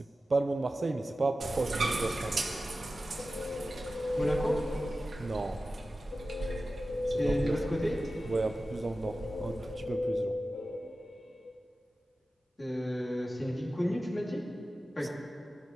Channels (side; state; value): both; normal; correlation 0.94